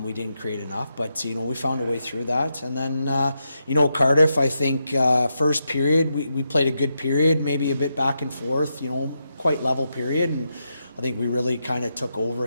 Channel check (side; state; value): both; inverted; correlation -0.84